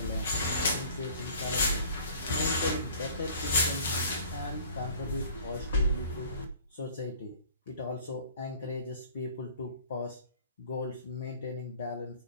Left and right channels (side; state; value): both; inverted; correlation -0.49